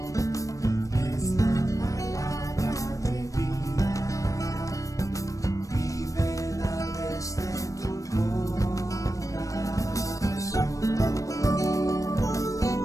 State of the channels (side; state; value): right; late; 0.16 ms